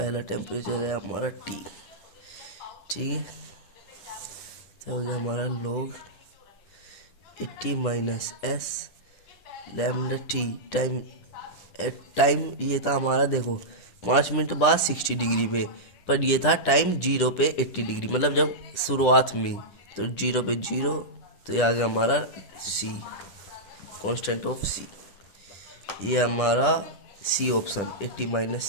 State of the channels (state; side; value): late; right; 10 ms